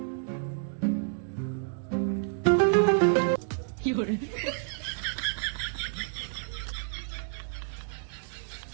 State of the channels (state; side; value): silent; left; digital silence